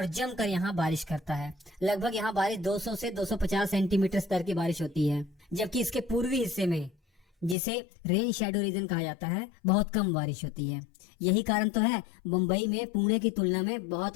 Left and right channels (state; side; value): drops out; right; at 7.6 s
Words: जमकर यहाँ बारिश करता है। लगभग यहाँ बारिश 200 से 250 सेंटीमीटर स्तर की बारिश होती है, जबकि इसके पूर्वी हिस्से में, जिसे रेन शैडो रीजन कहा जाता है, बहुत कम बारिश होती है। यही कारण तो है मुंबई में पुणे की तुलना में